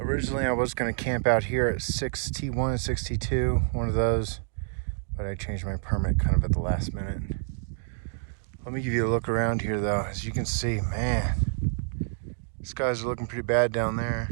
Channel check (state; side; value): silent; left; digital silence